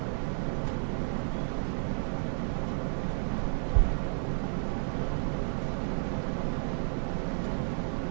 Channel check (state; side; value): silent; left; 55 dB below the other